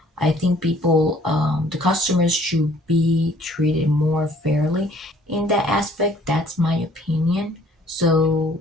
I think the customers should be treated more fairly in that aspect. That's my opinion. So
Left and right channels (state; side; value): normal; both; correlation 0.58